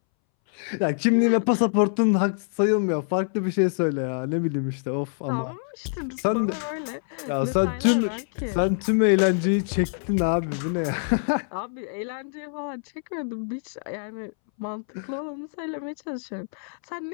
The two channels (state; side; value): silent; right; 61 dB below the other